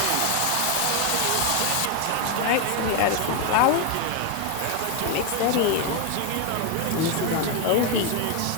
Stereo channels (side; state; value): both; different; correlation 0.01